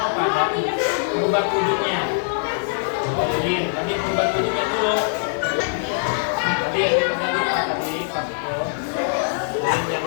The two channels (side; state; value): right; silent; 57 dB below the other